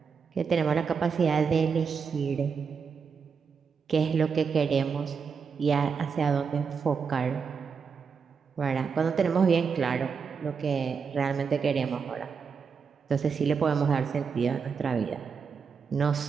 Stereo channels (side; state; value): left; quieter; 5.9 dB